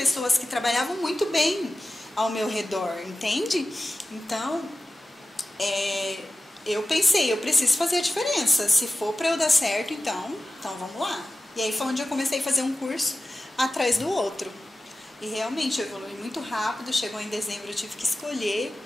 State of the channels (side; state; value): both; normal; correlation 0.94